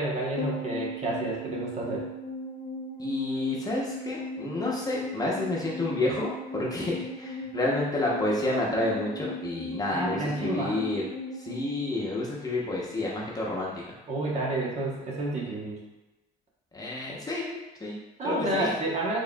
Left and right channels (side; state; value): both; normal; correlation 0.46